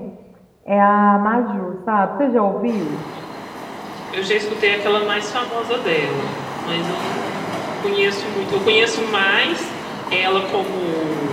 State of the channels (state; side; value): identical; both; correlation 1.00